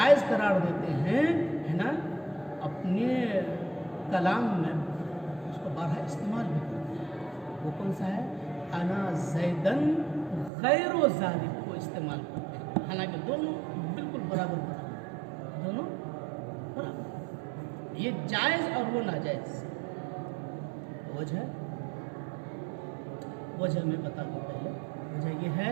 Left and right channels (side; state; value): left; drops out; at 10.5 s